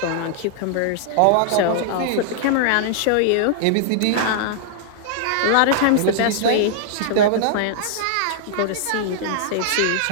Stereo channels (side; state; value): both; different; correlation -0.01